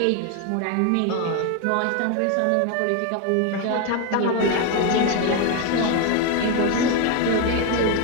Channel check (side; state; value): both; different; correlation 0.01